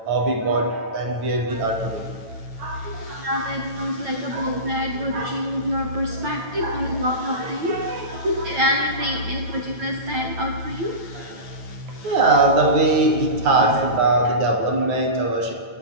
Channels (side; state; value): left; late; 9.1 ms